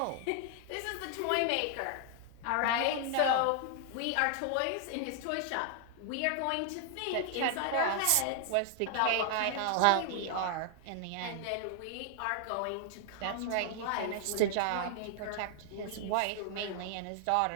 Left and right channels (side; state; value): both; different; correlation 0.00